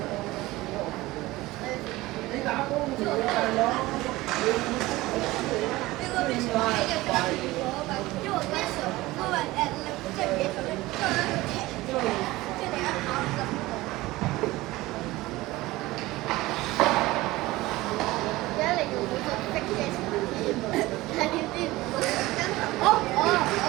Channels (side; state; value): left; quieter; 19.0 dB